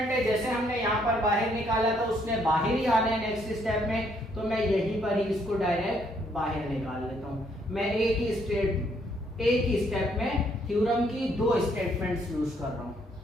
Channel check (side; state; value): both; normal; correlation 0.69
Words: है, जैसे हमने यहाँ पर बाहर निकाला था उसने बाहर ही आना है नेक्स्ट स्टेप में, तो मैं यहीं पर ही इसको डायरेक्ट बाहर निकाल लेता हूँ। मैं एक ही स्टेप में थ्योरम की 2 स्टेटमेंट्स यूज कर रहा हूँ।